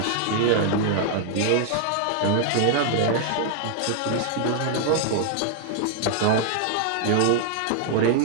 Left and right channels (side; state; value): both; different; correlation 0.00